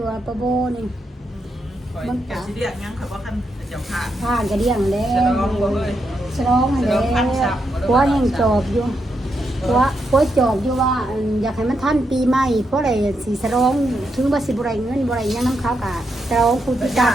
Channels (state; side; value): normal; both; correlation 0.82